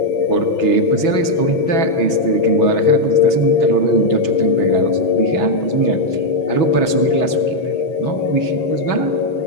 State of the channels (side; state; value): right; late; 6.2 ms